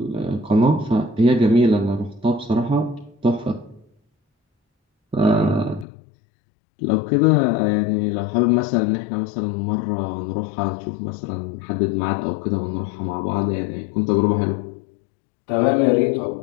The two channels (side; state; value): right; drops out; at 5.9 s